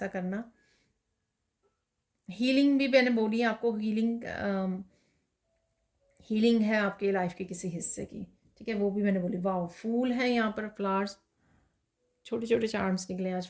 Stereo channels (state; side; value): identical; both; correlation 1.00